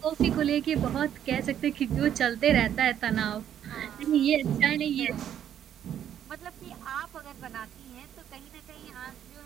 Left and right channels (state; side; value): quieter; left; 10.0 dB